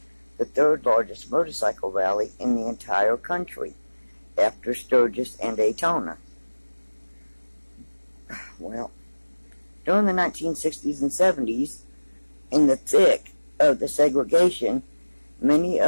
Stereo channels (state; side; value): inverted; both; correlation -1.00